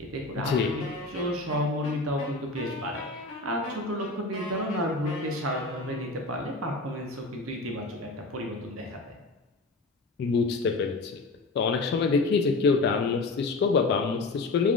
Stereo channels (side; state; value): right; quieter; 3.3 dB